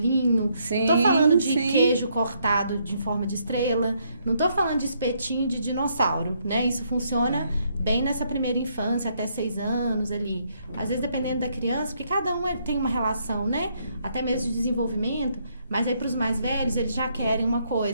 não tô falando de queijo cortado em forma de estrela, não tô falando de espetinho de dinossauro, né? Isso funciona bem nessa primeira infância, até 6 anos ali. Às vezes, dependendo da criança, porque cada um tem uma relação, né? Até mesmo de desenvolvimento. Mas aí, para os mais velhos, eles já querem uma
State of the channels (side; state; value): both; inverted; correlation -0.73